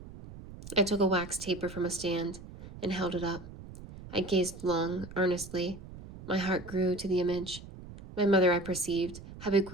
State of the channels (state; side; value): noise; right; rumble, 15 dB below the sound